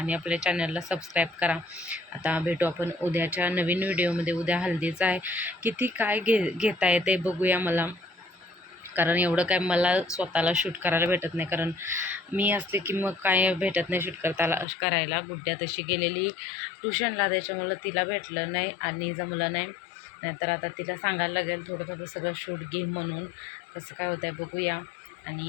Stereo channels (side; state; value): right; drops out; at 14.7 s